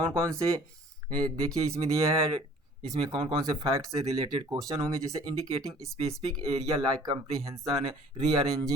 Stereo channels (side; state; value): both; normal; correlation 0.52